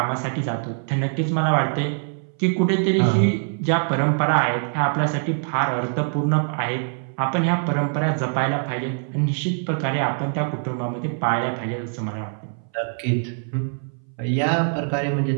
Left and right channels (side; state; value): left; silent; 62 dB below the other